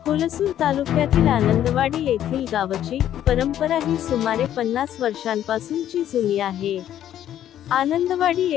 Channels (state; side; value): quieter; right; 11.2 dB